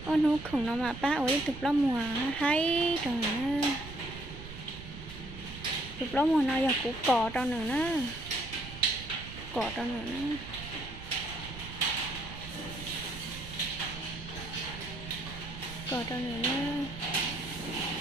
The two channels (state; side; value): noise; right; rumble, 12 dB below the sound